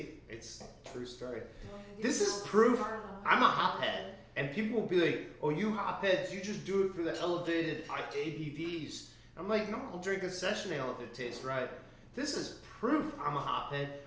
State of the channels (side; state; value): both; identical; correlation 1.00